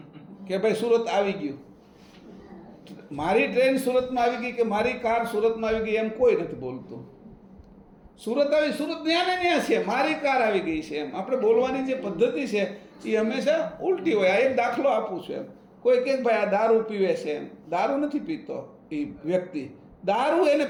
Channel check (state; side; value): identical; both; correlation 1.00